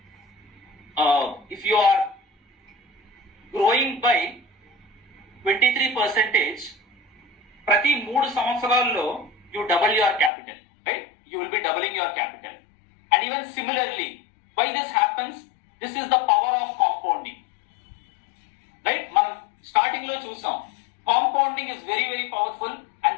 if you are growing by 23%, ప్రతి 3 సంవత్సరాల్లో you double your capital, right? You will be doubling your capital. And even similarly, why this happens? This is the power of compounding, right? మనం starting లో చూసాం, compounding is very very powerful and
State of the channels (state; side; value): drops out; right; at 10.3 s